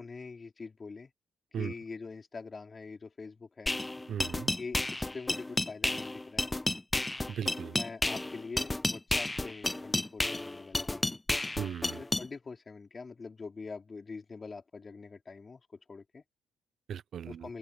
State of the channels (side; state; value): both; normal; correlation 0.96